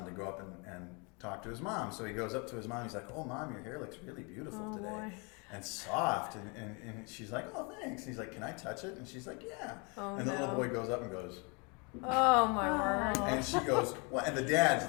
to go up and talk to his mom. So he goes up to his mom. He's like, "Oh, Mom, your hair looks really beautiful today." Boy. And soft, and she's like, "Oh, thanks." And he's like, "Can I touch it?" And she's like, "Yeah." Oh, and the little boy goes up and goes, "Oh, my word." and she goes, "What?" And the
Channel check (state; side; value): quieter; right; 31.8 dB